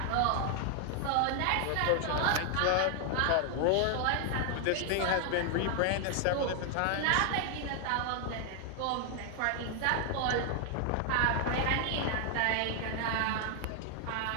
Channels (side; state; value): both; different; correlation 0.00